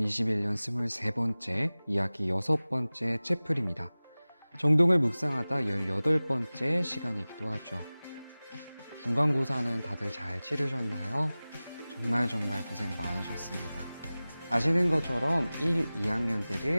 23번째 이야기 6번째 채플입니다. 정동을 묵상하다 18번째 시간이기도 하죠. 중간고사는 다들 잘 치르셨나요? 정말 고생 많으셨습니다. 아시는 것처럼 1,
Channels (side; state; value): both; inverted; correlation -0.98